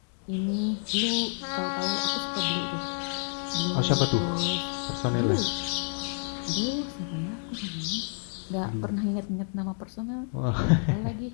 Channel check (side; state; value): right; silent; 58 dB below the other